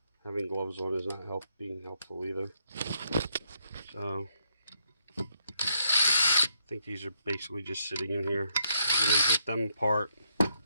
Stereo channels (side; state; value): both; inverted; correlation -0.76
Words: Having gloves on is not being helpful either. So I think these are basically just sitting in here. I'm going to get them apart